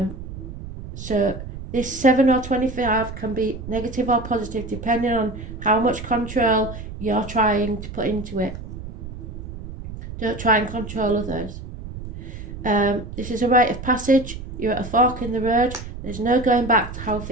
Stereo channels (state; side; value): noise; right; rumble, 10 dB below the sound